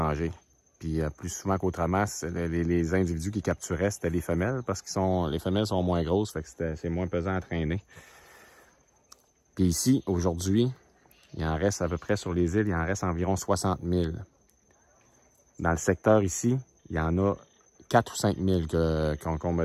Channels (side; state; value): both; identical; correlation 1.00